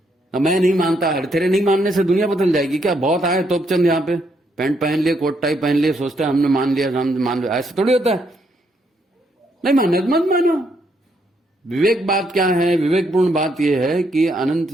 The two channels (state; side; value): normal; both; correlation 0.74